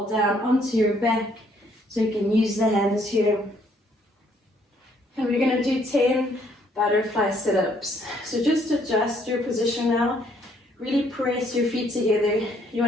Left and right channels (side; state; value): both; normal; correlation 0.67